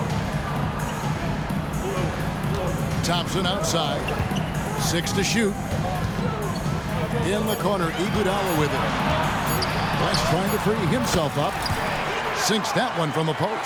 Thompson outside. 6 to shoot. In the corner, Iguodala with it. West trying to free himself up. Sinks that one from the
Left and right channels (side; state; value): both; identical; correlation 1.00